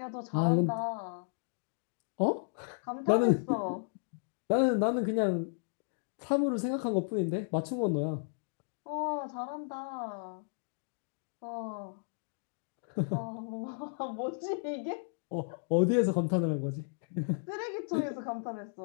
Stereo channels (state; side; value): silent; right; digital silence